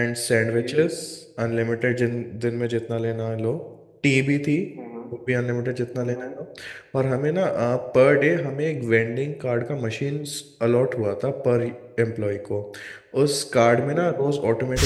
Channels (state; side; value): identical; both; correlation 1.00